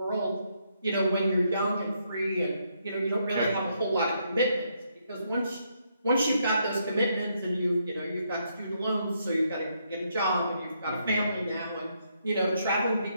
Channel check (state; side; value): inverted; both; correlation -0.76